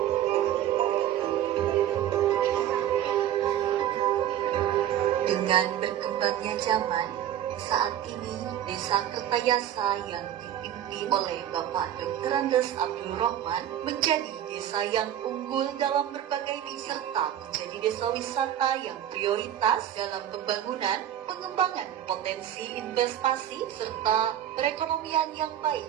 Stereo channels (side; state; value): left; quieter; 11.1 dB